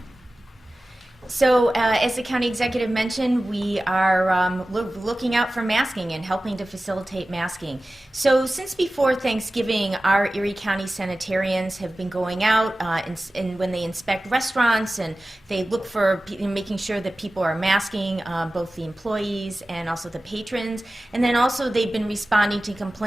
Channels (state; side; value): normal; both; correlation 0.96